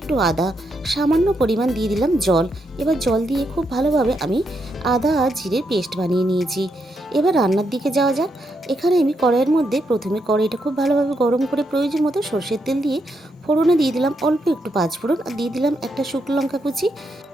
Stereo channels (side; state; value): both; normal; correlation 0.80